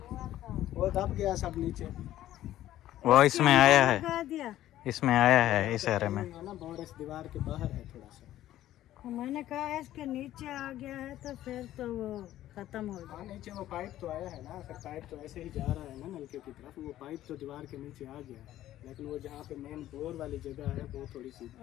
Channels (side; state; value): right; quieter; 13.5 dB